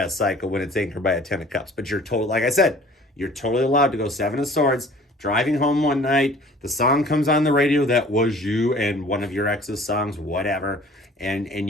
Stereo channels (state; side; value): normal; both; correlation 0.50